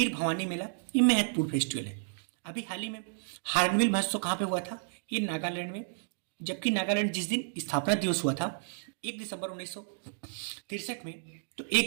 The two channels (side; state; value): left; silent; digital silence